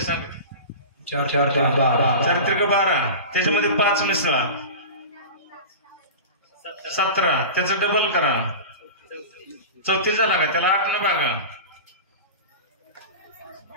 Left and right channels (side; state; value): both; inverted; correlation -0.31